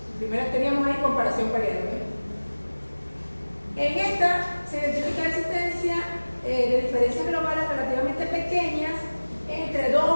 Primero teníamos ahí comparación pareada. En esta se identifica la existencia de diferencias globales relativamente pequeñas entre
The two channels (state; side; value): inverted; both; correlation -1.00